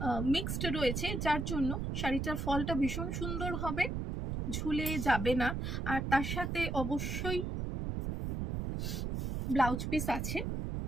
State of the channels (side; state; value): right; noise; rumble, 2 dB below the sound